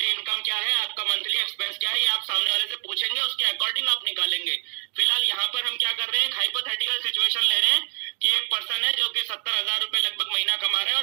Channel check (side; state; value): left; quieter; 35.6 dB